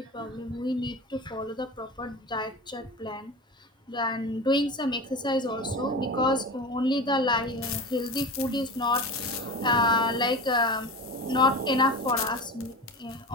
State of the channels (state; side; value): normal; both; correlation 0.30